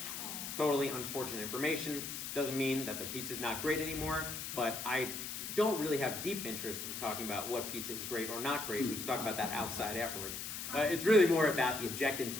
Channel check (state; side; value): noise; left; hiss, 6 dB below the sound